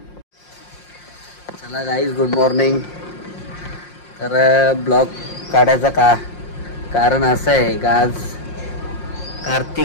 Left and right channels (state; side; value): late; right; 5.6 ms